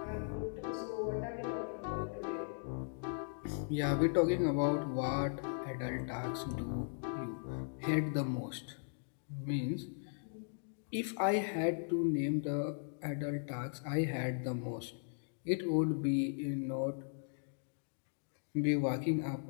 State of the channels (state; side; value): silent; right; digital silence